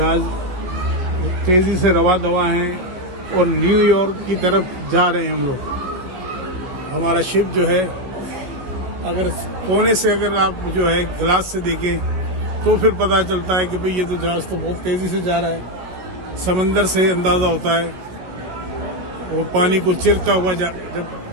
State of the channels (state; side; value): late; left; 17 ms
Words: तेज़ी से रवा दवा हैं और न्यूयॉर्क की तरफ जा रहे हैं हम लोग। हमारा शिप जो है, अगर कोने से अगर आप जो है गिलास से देखें तो फिर पता चलता है कि भाई ये तो जहाज़ तो बहुत तेज़ी से जा रहा है। समंदर से अंदाज़ा होता है, वो पानी को चिरता हुआ जब